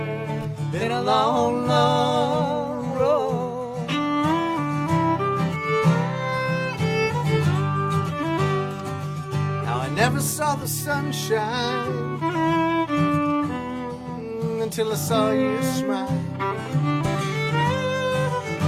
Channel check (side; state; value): both; identical; correlation 1.00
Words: long road. Now I never saw the sunshine until I saw you smile.